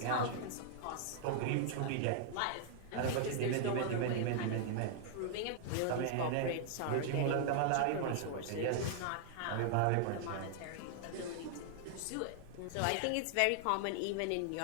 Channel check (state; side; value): different; both; correlation -0.01